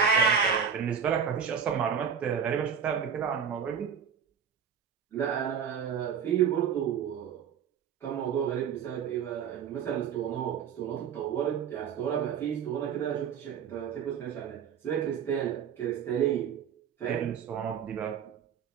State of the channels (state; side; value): quieter; left; 7.3 dB